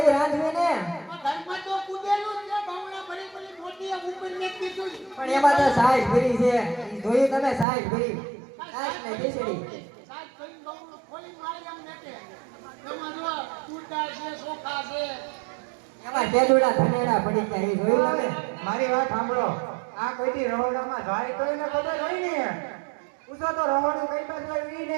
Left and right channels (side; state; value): left; drops out; at 7.7 s